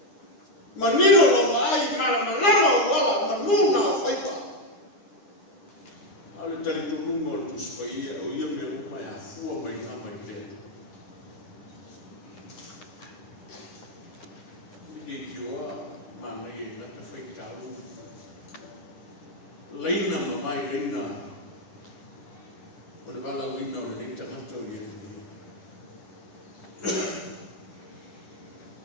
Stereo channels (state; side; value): late; right; 9.8 ms